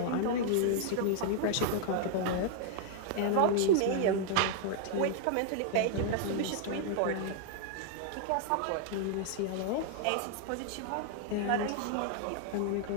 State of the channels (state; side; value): different; both; correlation 0.00